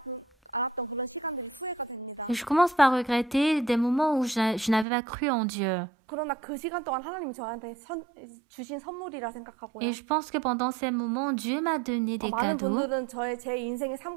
Et je commence par regretter des moments où je n'avais pas cru en Dieu. Et je pense que pendant ces moments, Dieu m'a donné des cadeaux.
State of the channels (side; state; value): left; drops out; at 4.9 s